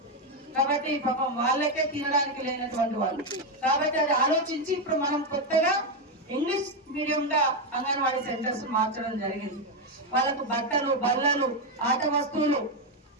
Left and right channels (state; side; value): normal; both; correlation 0.06